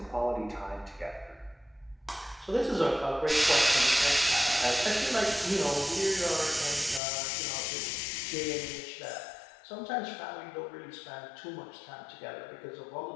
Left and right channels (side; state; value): right; drops out; at 7.0 s